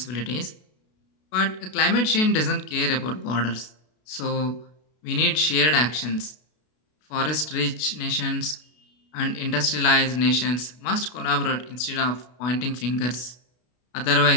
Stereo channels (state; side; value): late; right; 32 ms